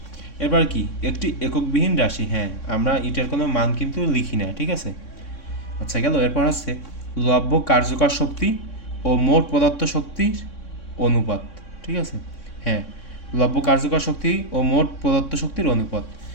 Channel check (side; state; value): right; late; 3.6 ms